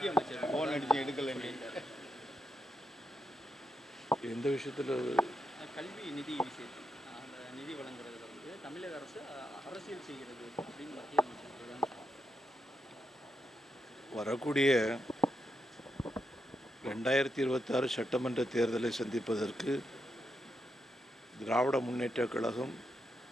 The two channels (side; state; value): both; normal; correlation 0.83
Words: அமைச்சர் ஃபோன் அடித்து எடுக்கலை. எந்த விஷயத்தில்? கல்வி நிதி விஷயத்தில், அந்த நிதி வழங்குறதுல வந்து தமிழக அரசு அரசியல் செய்கிறது அப்படின்னு மத்திய அமைச்சர் தான். வரக்கூடிய 2026 சட்டமன்ற தேர்தலை சந்திப்பதற்கு திராவிட முன்னேற்ற கழகம்